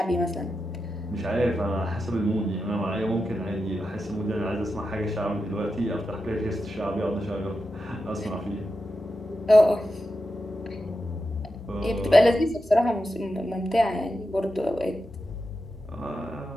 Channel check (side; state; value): both; normal; correlation 0.89